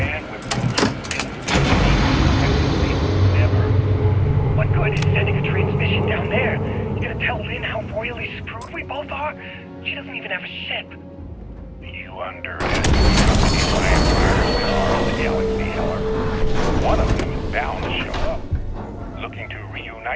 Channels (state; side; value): identical; both; correlation 1.00